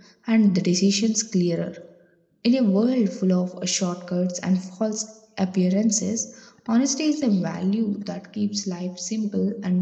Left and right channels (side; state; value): both; identical; correlation 1.00